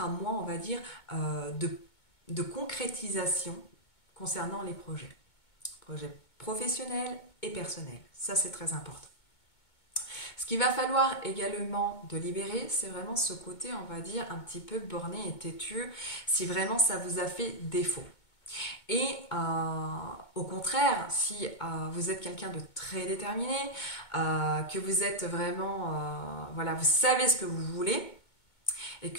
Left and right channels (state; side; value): late; right; 2.2 ms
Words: un mois, on va dire, de concrétisation concernant les projets professionnels et personnels. Ça, c'est très important. Ce qu'il va falloir également de libérer, c'est vraiment ce côté, on va dire, un petit peu borné et têtu, si vraiment ça vous a fait défaut. Et au contraire, si vous êtes quelqu'un de très déterminé, que vous êtes vraiment, voilà, vous savez ce que vous voulez, et